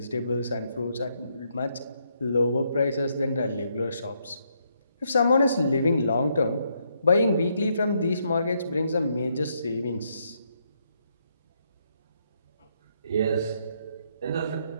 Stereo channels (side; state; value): both; inverted; correlation -0.75